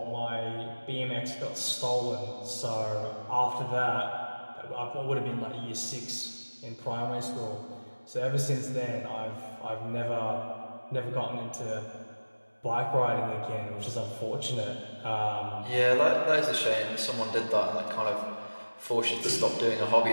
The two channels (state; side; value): inverted; both; correlation -1.00